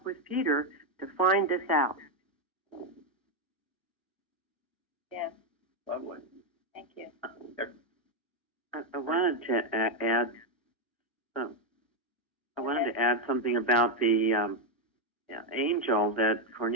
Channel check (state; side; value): normal; both; correlation 0.04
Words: with Peter to find this out. Yes. Lovely. Thank you. I wanted to add. I wanted to add something about the angel that